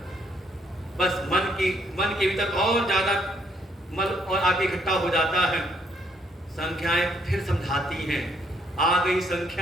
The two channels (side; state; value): both; normal; correlation 0.69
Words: बस मन के भीतर और ज्यादा मल और आगे इकट्ठा हो जाता है। संख्याएं फिर समझाती हैं। आ गई